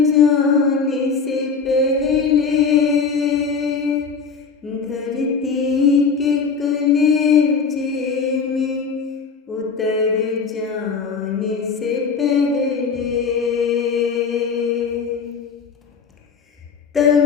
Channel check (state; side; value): quieter; right; 5.4 dB